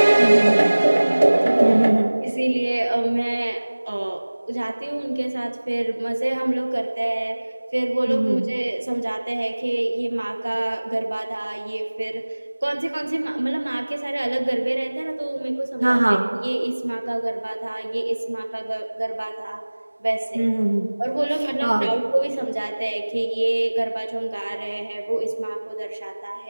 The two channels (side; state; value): both; inverted; correlation -1.00